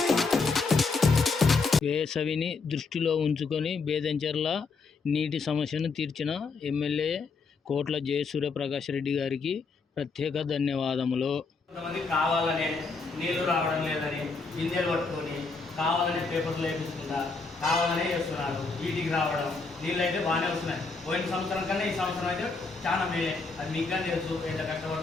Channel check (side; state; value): right; quieter; 4.3 dB